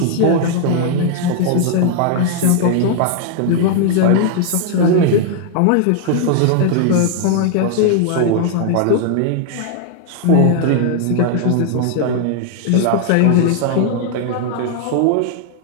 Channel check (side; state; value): both; different; correlation 0.00